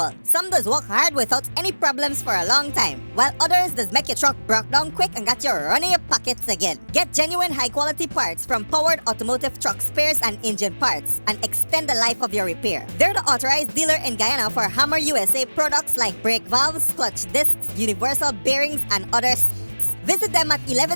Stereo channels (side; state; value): both; inverted; correlation -1.00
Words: Some does work hard without any problems for a long time, while others does make your truck broke down quick and got you running your pockets again. Get genuine high-quality parts from Powered Automotive Truck Spares and Engine Parts and extend the life of your repair. They're the authorized dealer in Guyana for Hammer USA products like brake valves, clutch discs, universal bearings, and others. Visit them at